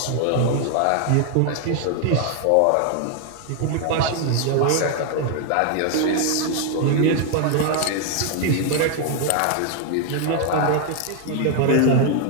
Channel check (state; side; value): different; both; correlation 0.00